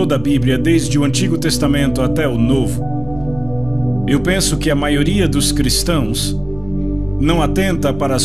a Bíblia, desde o Antigo Testamento até o Novo, eu penso que a maioria dos cristãos não atenta para a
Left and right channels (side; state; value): left; noise; rumble, 17 dB below the sound